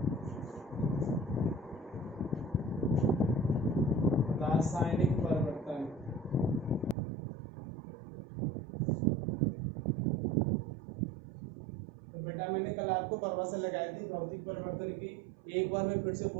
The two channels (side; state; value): left; drops out; at 7.0 s